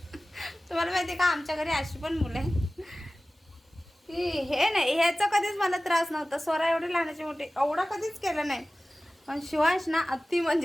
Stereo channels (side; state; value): both; normal; correlation 0.97